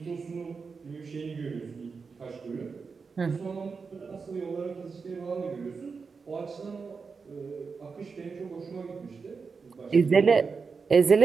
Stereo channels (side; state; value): left; quieter; 5.1 dB